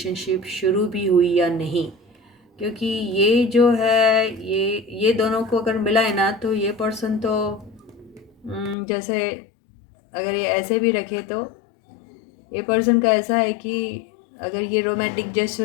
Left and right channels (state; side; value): drops out; right; at 8.8 s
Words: शुरू भी हुई या नहीं, क्योंकि ये जो है ये दोनों को अगर मिला है ना, तो ये पर्सन तो जैसे अगर ये ऐसे भी रखे तो ये पर्सन का ऐसा है कि अगर ये रोमांटिक